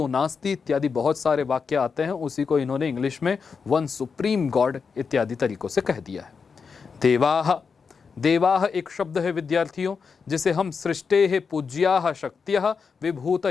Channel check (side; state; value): right; quieter; 5.6 dB